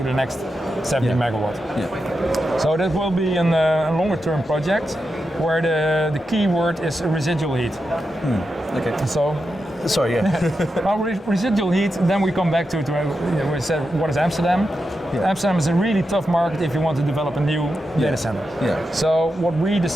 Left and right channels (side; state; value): both; normal; correlation 0.88